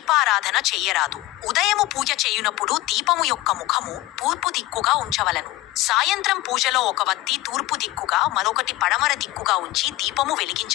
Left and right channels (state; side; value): quieter; right; 18.2 dB